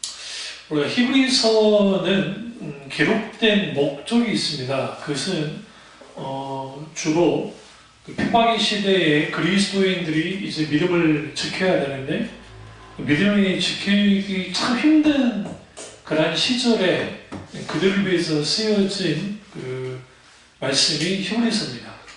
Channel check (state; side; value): identical; both; correlation 1.00